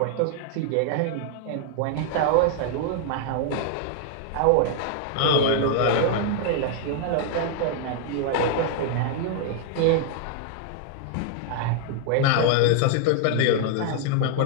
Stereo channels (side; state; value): both; different; correlation -0.01